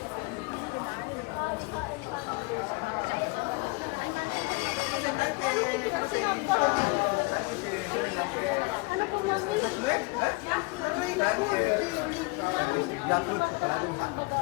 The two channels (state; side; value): quieter; right; 27.1 dB